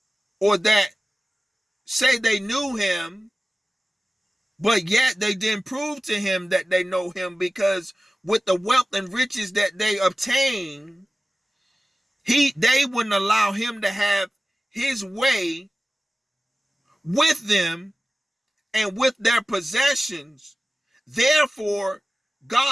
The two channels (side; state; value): both; normal; correlation 0.96